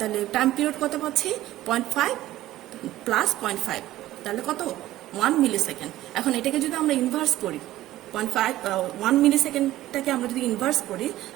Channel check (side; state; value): left; quieter; 15.0 dB